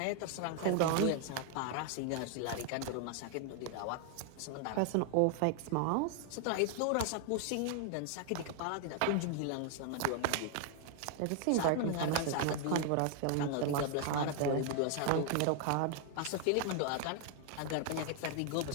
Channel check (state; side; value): different; both; correlation 0.00